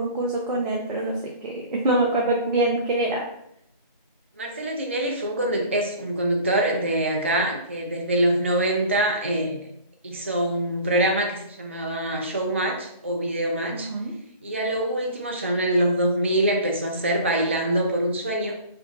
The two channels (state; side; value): inverted; both; correlation -0.42